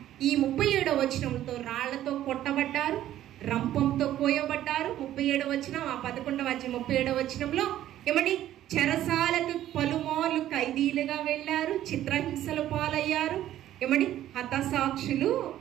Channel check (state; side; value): quieter; left; 12.7 dB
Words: ఈ 37వ వచనంతో రాళ్లతో కొట్టబడ్డారు, రంపంతో కోయబడ్డారు. 37వ వచనం, ఆ 11వ 37వ వచనంలో ఏమండి? చెరసాలకు పలుమార్లు ఖైదీలుగా వెళ్ళారు, చిత్రహింసలు పాలయ్యారు. ఏమండి? హతసాక్షులు,